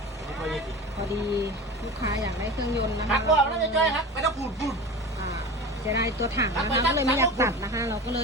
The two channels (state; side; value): normal; both; correlation 0.32